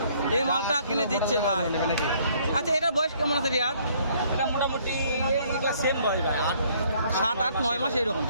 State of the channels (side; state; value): both; inverted; correlation -0.62